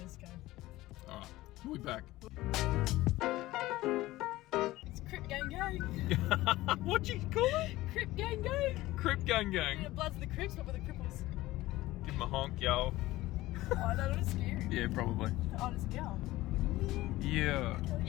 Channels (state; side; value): quieter; right; 17.5 dB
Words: go. Alright, we'll be back. It's Crip Gang Gang. What'd you call it? Crip Gang Gang. Crip Gang Yeah, Gang. Bloods of the Crips, not for the cripples. Give him a honk, yo. Oh, no, not scary. Yeah, probably. Oh, it's a girl. Yeah.